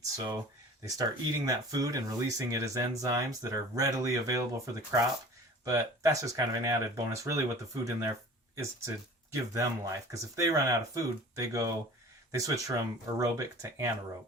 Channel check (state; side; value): normal; both; correlation 0.43